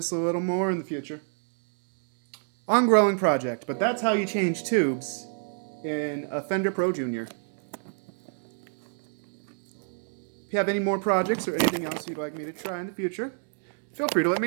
a little more in the future. Ongoing project, but that's how you change tubes in a Fender Pro Junior. If you have any more projects or anything else you'd like me to try in the future, feel free to let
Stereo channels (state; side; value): silent; left; 59 dB below the other